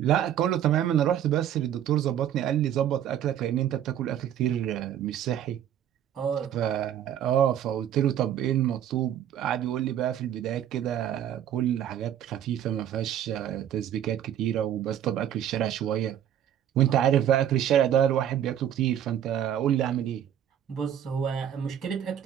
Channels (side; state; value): left; quieter; 10.4 dB